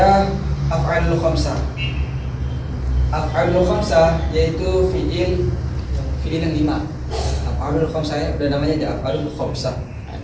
af'alul khamsah. Af'alul khamsah yaitu fi'il yang 5. Af'alul khamsah udah namanya aja af'alul khamsah.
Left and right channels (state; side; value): identical; both; correlation 1.00